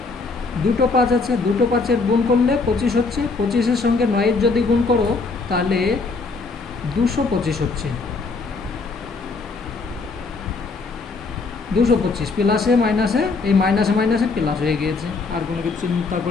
দুটো 5 আছে, দুটো 5-এর গুণ করলে 25 হচ্ছে, 25-এর সঙ্গে 9-এর যদি গুণ করো তাহলে 225 হচ্ছে। 225 প্লাসে মাইনাসে, এই মাইনাসে মাইনাসে প্লাস হয়ে গিয়েছে, আর কোনো কিছু চিন্তা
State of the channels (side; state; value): right; quieter; 4.1 dB